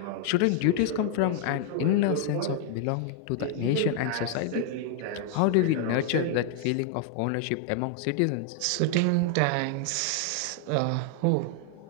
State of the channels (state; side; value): different; both; correlation 0.00